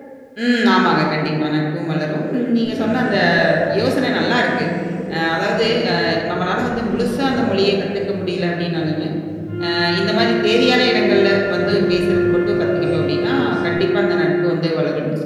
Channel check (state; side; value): identical; both; correlation 1.00